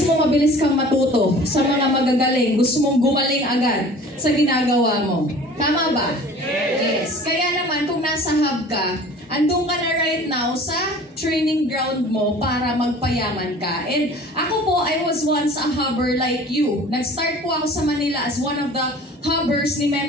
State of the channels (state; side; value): normal; both; correlation 0.45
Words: mong mabilis kang matuto sa mga magagaling. Gusto mong gumaling agad sa ginagawa mo. Tama ba? Yes! Kaya naman kung nasa hub ka, andun ka na right now sa training ground mo para magpayaman ka. And ako po, I was once a hubber like you. Nag-start po ako sa Manila as one of the hubbers ni